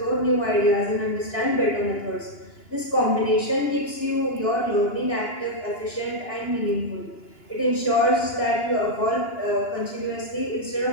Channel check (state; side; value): late; right; 2.9 ms